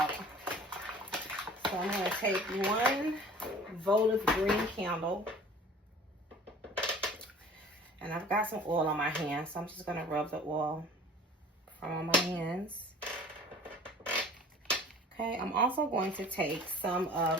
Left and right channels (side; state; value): both; normal; correlation 0.46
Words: So I'm going to take one votive green candle. And I've got some oil on my hands. So I'm just going to rub the oil from on my hands. Okay. I'm also going to take some